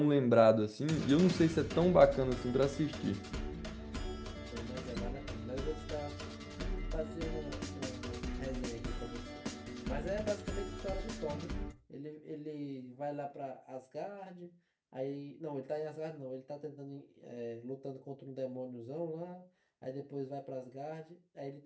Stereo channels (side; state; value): both; identical; correlation 1.00